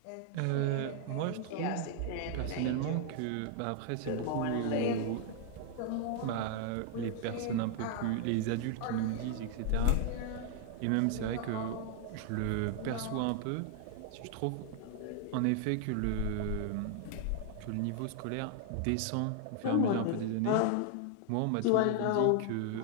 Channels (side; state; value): both; different; correlation 0.00